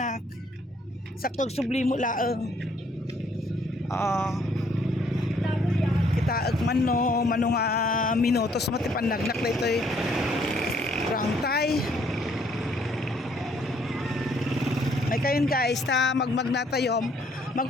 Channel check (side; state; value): both; normal; correlation 0.66